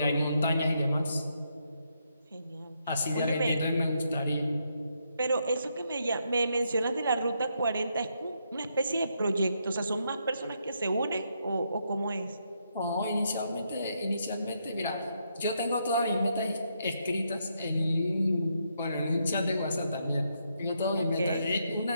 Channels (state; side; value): inverted; both; correlation -0.78